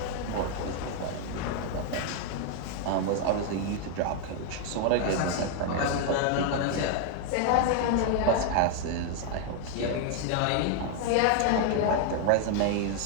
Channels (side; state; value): both; different; correlation 0.00